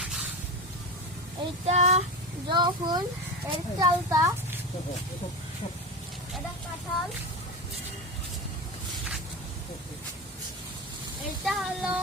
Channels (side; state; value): both; normal; correlation 0.22